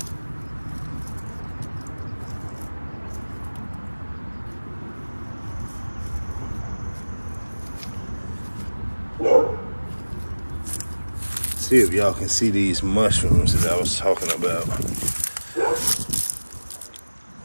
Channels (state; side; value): inverted; both; correlation -1.00